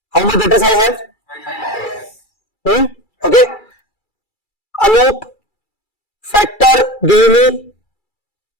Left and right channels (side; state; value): right; late; 2.3 ms